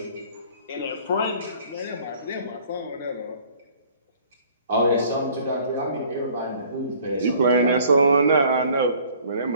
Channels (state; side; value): inverted; both; correlation -0.54